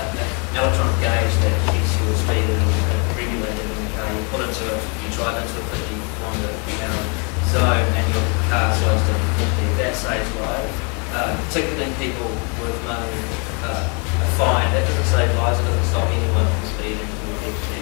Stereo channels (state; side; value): quieter; right; 35.0 dB